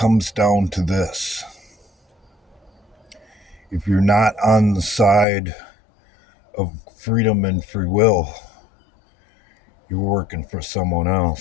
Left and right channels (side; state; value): right; drops out; at 5.2 s